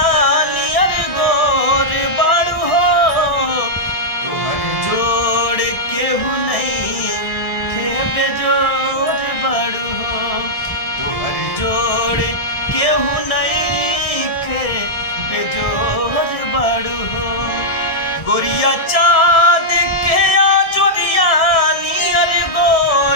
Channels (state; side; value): late; right; 1.6 ms